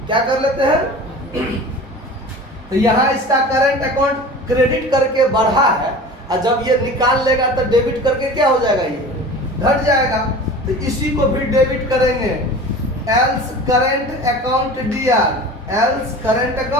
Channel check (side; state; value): both; normal; correlation 0.38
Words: क्या कर लेते हैं? तो यहाँ इसका करंट अकाउंट क्रेडिट करके बढ़ा है, और जब ये निकाल लेगा तो डेबिट करके क्या हो जाएगा? ये घट जाएगा। तो इसी को भी डेबिट करेंगे। Else current account DR, else current